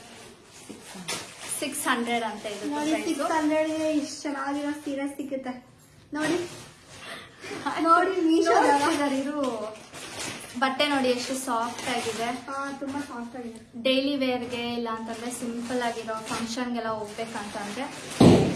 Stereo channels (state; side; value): identical; both; correlation 1.00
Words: 600 ಅಂತ. ಇದು ನೋಡಿ 600ಗೆ ಇಷ್ಟು ಚೆನ್ನಾಗಿರೋ ಸೀರೆ ಸಿಗುತ್ತೆ. ನೋಡಿ ನೋಡಿ ಇದು ಬಟ್ಟೆ ನೋಡಿ ಎಷ್ಟು ಸಾಫ್ಟ್ ಆಗಿದೆ. ತುಂಬಾ ಸಾಫ್ಟ್ ಆಗಿದೆ. ಡೈಲಿ ವೇರ್ಗೆ ಇಲ್ಲ ಅಂತಂದ್ರೆ ಸಿಂಪಲ್ ಆಗಿರೋ ಫಂಕ್ಷನ್ಗೆಲ್ಲ ಹೋಗ್ಬೇಕಂತಂದ್ರೆ